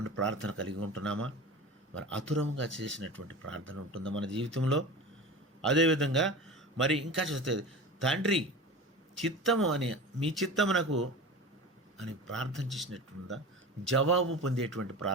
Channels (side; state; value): both; normal; correlation 0.32